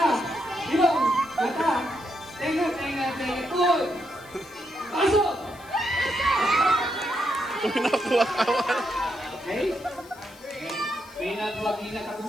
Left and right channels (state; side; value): noise; left; hiss, 23 dB below the sound